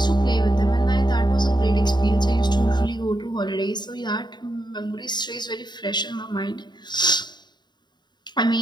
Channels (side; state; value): right; late; 0.21 ms